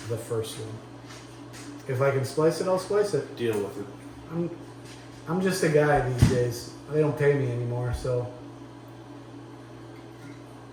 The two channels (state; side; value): identical; both; correlation 1.00